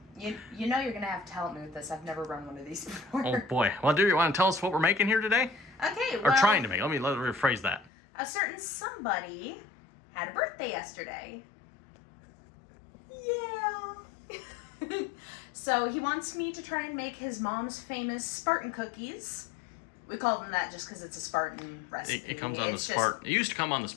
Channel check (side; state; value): right; drops out; at 7.9 s